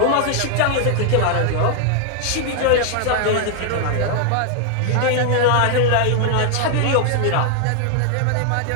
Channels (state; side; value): different; both; correlation 0.00